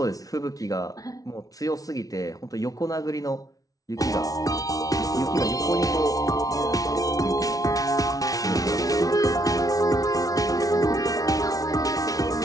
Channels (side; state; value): right; late; 0.18 ms